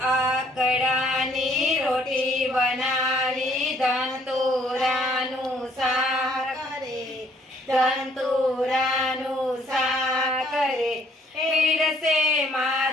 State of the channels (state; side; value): normal; both; correlation 0.64